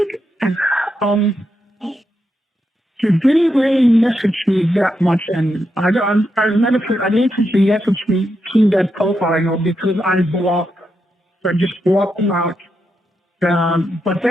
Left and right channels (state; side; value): normal; both; correlation 0.84